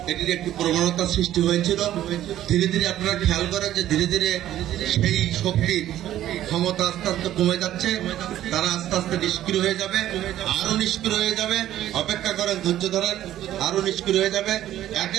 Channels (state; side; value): quieter; left; 12.7 dB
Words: এটির একটি প্রবণতা সৃষ্টি হয়েছিল। ধীরে ধীরে আপনারা খেয়াল করেন যে ধীরে ধীরে সেই শক্তির ক্ষমতা আস্তে আস্তে কমে যাচ্ছে। তারা আস্তে আস্তে নিষ্ক্রিয় হয়ে যাবে, আরো নিষ্ক্রিয় হয়ে যাবে। অপেক্ষা করেন, ধৈর্য ধরেন, আরো নিষ্ক্রিয় হয়ে যাবে।